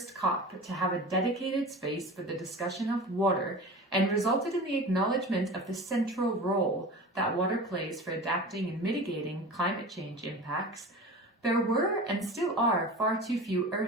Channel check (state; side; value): normal; both; correlation 0.34